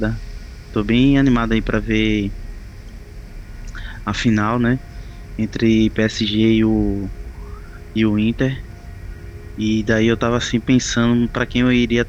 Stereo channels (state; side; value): identical; both; correlation 1.00